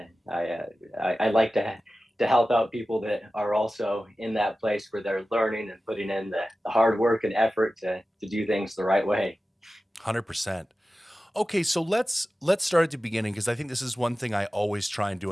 like to help out people that are also in that place where they're learning and putting in the hard work and effort to do things the right way. 100%. Okay, so let's start at the beginning, because I think this is one thing I always try and do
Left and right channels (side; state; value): both; normal; correlation 0.95